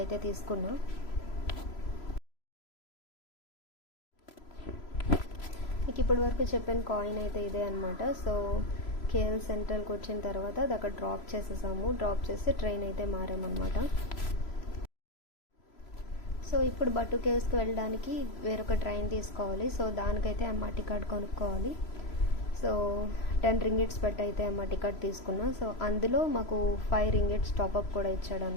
అయితే తీసుకున్నా. మీకు ఇప్పటి వరకు చెప్పిన కాయిన్ అయితే ఇదే అనమాట. సో కేఎల్ సెంట్రల్కి వచ్చిన తర్వాత అది అక్కడ డ్రాప్ చేసేసాము. డ్రాప్ చేసి ట్రైన్ అయితే మారామన్నమాట. సో ఇప్పుడు బటూకేవ్స్కి వెళ్ళడానికి వేరొక ట్రైన్ తీసుకోవాలి. సో దానికైతే ఎంఆర్టీ కార్డ్ కొనుక్కోవాలి. సో 10 రింగిట్స్ పెట్టి అయితే ఎంఆర్టీ కార్డ్ తీసుకున్నా. సో అందులో మాకు 5 రింగిట్స్ టాప్అప్ కూడా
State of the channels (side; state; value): right; late; 3.0 ms